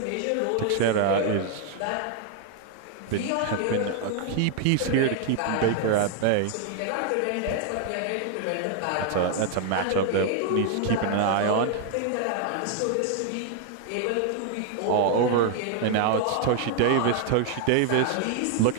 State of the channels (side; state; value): both; different; correlation 0.00